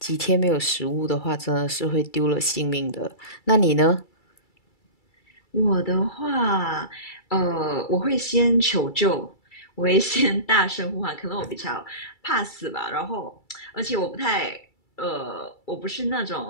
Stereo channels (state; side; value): late; right; 2.3 ms